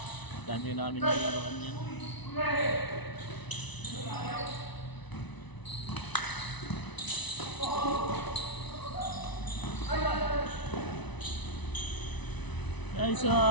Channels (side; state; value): right; late; 1.0 ms